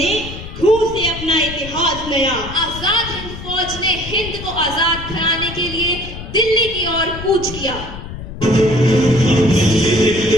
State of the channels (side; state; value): left; noise; rumble, 11 dB below the sound